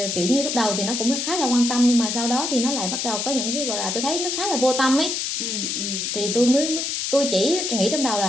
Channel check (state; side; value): noise; left; hiss, 2 dB below the sound